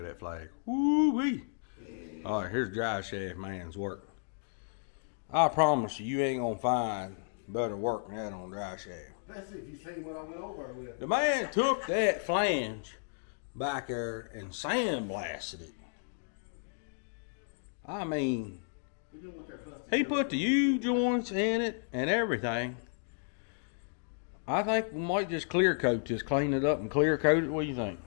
that flag. Woo-wee. All right, here's drive shaft man's work. I promise you, you ain't gonna find better work than that on drive shaft. Especially if you seen what I went over with. The man took that flange back there and sandblasted it. I mean, he put the U-joints in it and everything. I think we might just clear coat this, clean it up and clear coat it. What do you think?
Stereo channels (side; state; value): right; silent; digital silence